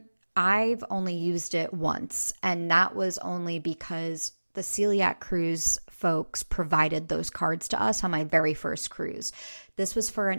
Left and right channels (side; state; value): both; inverted; correlation -1.00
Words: I've only used it once, and that was only because the Celiac Cruise folks provided those cards to us on my very first cruise. This was for